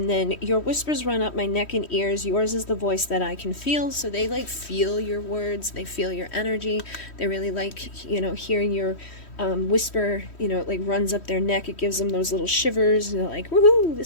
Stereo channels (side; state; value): right; late; 3.1 ms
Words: then your whispers run up my neck and ears. Yours is the voice that I can feel. So they like feel your words. They feel your energy. They really like, you know, hearing your whisper, you know, it like runs up their neck. It gives them those little shivers. And they're like, woohoo,